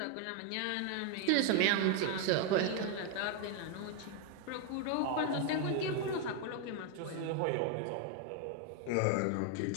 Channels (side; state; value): both; different; correlation 0.01